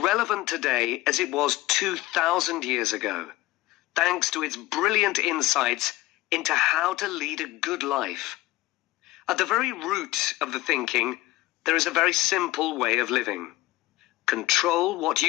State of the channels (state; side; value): quieter; right; 18.3 dB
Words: today as it was 2,000 years ago, thanks to its brilliant insights into how to lead a good life. At the very root of the thinking, there is a very simple way of living. Control what